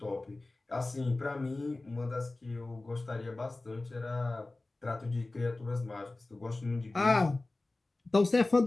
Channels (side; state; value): right; quieter; 3.0 dB